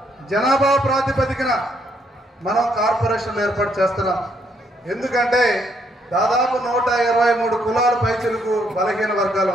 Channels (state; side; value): normal; both; correlation 0.72